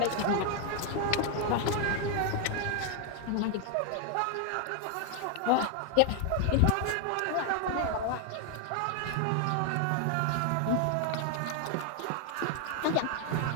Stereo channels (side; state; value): both; different; correlation 0.00